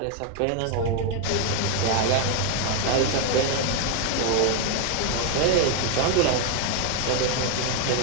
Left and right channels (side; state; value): both; different; correlation 0.01